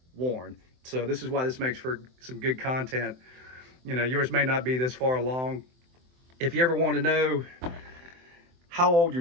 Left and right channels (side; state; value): left; late; 23 ms